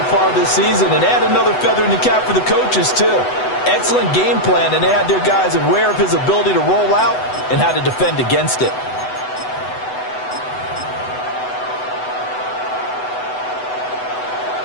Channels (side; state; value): right; late; 8.0 ms